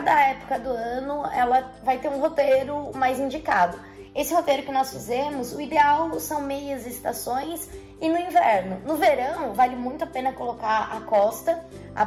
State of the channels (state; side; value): identical; both; correlation 1.00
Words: época do ano ela vai ter um roteiro mais indicado. Esse roteiro que nós fizemos, o ideal são meias estações e no inverno. No verão, vale muito a pena colocar a costa, a